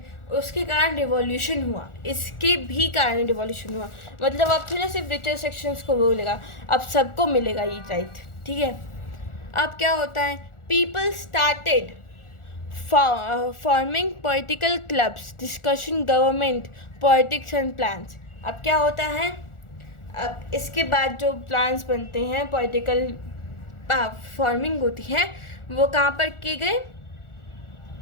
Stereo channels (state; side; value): late; right; 1.4 ms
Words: उसके कारण रिवॉल्यूशन हुआ, इसके भी कारण रिवॉल्यूशन हुआ। मतलब अब तो ना सिर्फ रिचर सेक्शंस को बोलेगा, अब सबको मिलेगा ये राइट, ठीक है। अब क्या होता है, people started forming political clubs, discussion government politics and plans. अब क्या होता है, अब इसके बाद जो प्लान्स बनते हैं, पॉलिटिकल फॉर्मिंग होती है, वो कहाँ पर किए गए,